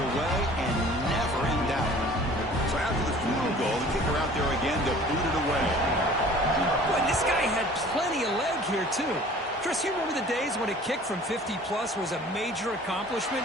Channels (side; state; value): both; normal; correlation 0.48